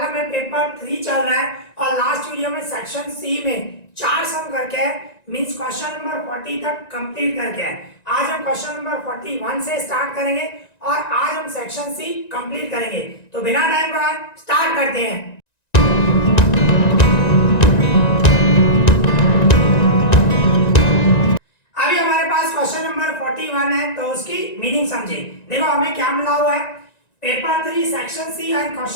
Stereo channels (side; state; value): right; late; 1.9 ms